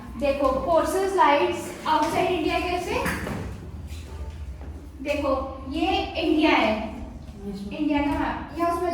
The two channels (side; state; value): both; identical; correlation 1.00